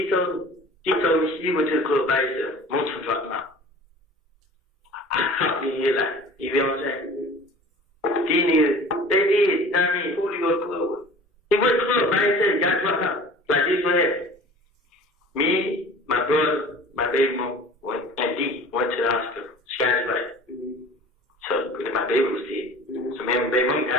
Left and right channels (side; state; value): both; normal; correlation 0.43